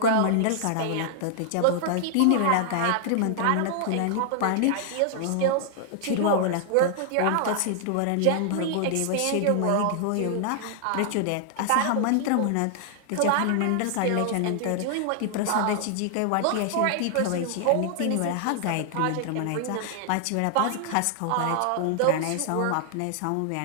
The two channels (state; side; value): different; both; correlation 0.00